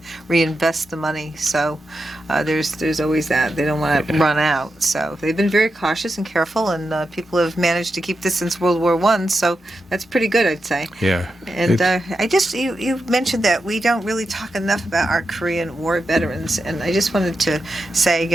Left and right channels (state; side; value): normal; both; correlation 0.88